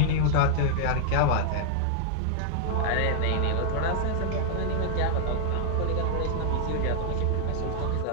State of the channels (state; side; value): different; both; correlation -0.01